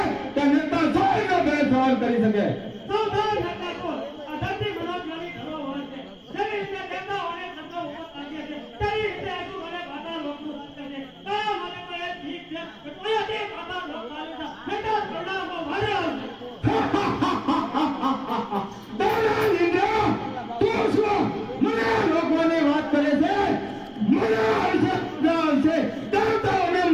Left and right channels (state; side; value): identical; both; correlation 1.00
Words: કે નેતા સોયનો બે સવાલ કરી શકે? સૌધાન હતા કોણ? આ ધરતી મનોજ્ઞાની ધરોહર છે. જેવી રીતે દેવતાઓને શબ્દો ઉભો કાઢીએ છે, તેવી રીતે હજુ મને પાતાળ લોકનું સત્ય છે. તારા માટે તો એ ઠીક છે કે કોઈથી પાતાળ લોક ચાલે છે. નહીંતર પ્રણામો ભારે આવશે. દેવરાજ ઇન્દ્ર તું શું મને રોકવાની વાત કરે છે? મને આવશે દેવતાઓને